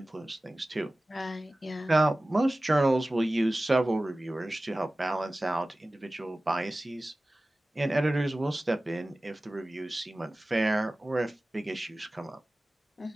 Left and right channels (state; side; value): normal; both; correlation 0.97